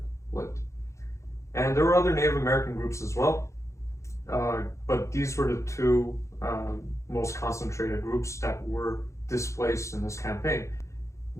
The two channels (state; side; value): late; right; 0.14 ms